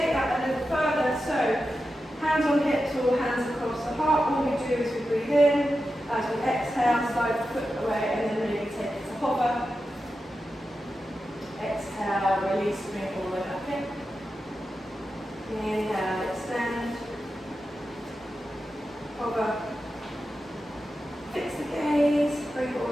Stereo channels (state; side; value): normal; both; correlation 0.91